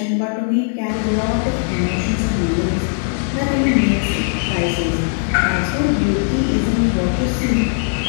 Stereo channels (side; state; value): right; silent; 67 dB below the other